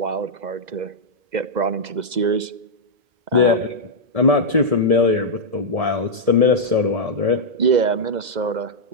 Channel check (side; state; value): left; late; 2.0 ms